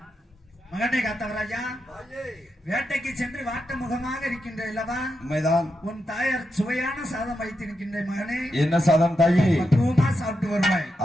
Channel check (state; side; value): normal; both; correlation 0.86